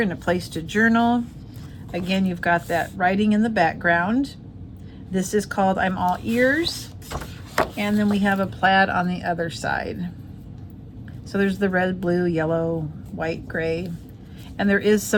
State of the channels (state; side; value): identical; both; correlation 1.00